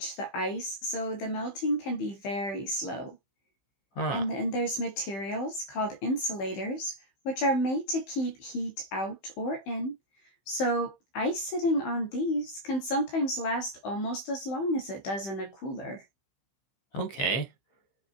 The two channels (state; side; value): late; right; 15 ms